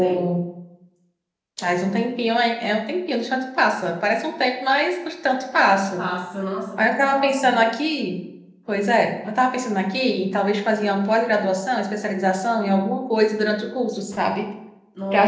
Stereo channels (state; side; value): identical; both; correlation 1.00